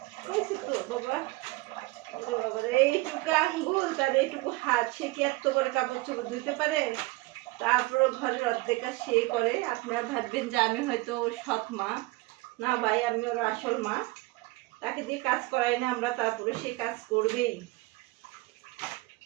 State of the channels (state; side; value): quieter; left; 22.1 dB